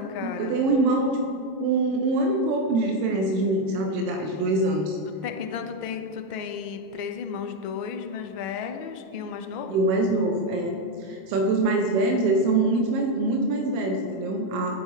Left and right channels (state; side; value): late; left; 26 ms